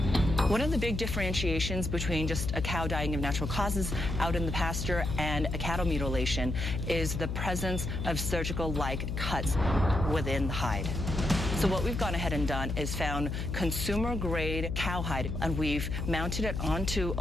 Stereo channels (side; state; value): left; noise; hum, 3 dB below the sound